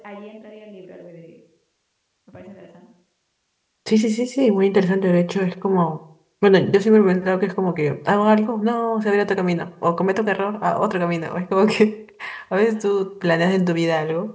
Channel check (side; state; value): both; identical; correlation 1.00